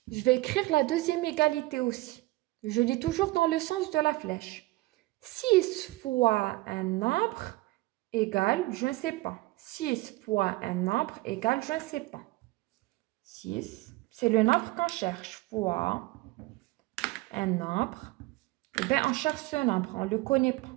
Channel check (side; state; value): left; quieter; 20.4 dB